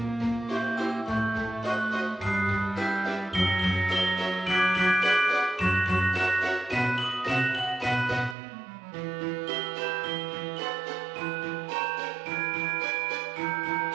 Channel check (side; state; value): left; drops out; at 8.3 s